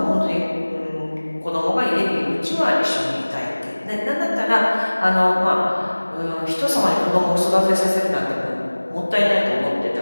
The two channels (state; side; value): inverted; both; correlation -1.00